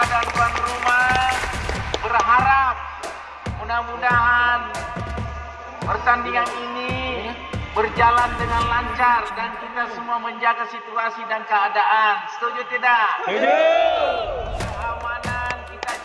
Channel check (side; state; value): both; identical; correlation 1.00